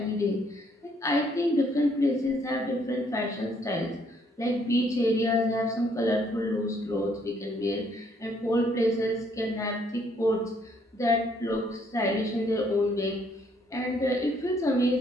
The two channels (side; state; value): both; normal; correlation 0.67